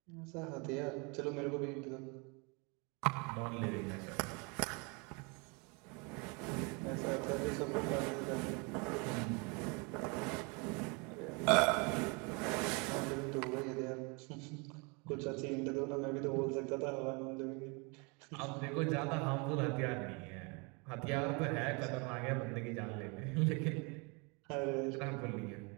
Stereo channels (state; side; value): quieter; left; 30.9 dB